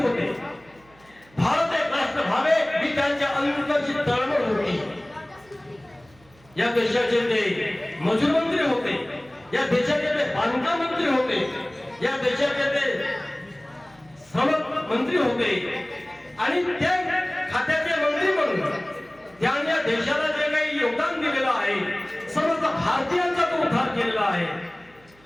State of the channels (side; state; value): right; noise; hum, 29 dB below the sound